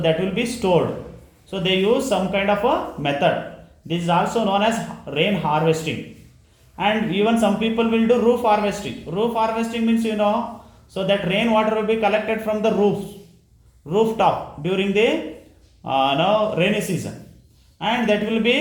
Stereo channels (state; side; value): identical; both; correlation 1.00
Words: will be stored. So they use some kind of a method. This is also known as rain harvesting. And even some people will do roof harvesting. Roof harvesting means so that rainwater will be collected from the rooftop during the rainy season, and that will